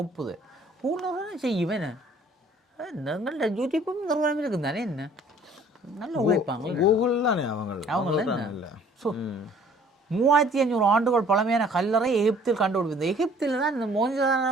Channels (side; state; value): both; normal; correlation 0.55